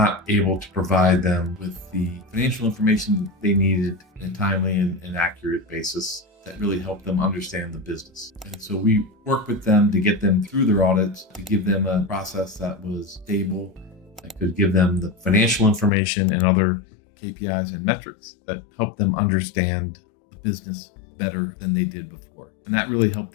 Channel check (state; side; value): drops out; right; at 15.9 s